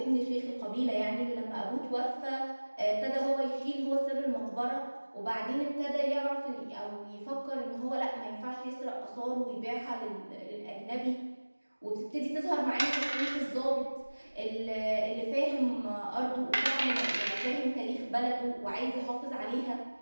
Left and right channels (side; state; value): both; inverted; correlation -1.00